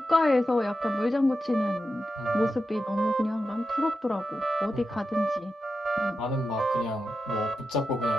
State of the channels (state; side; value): normal; both; correlation 0.89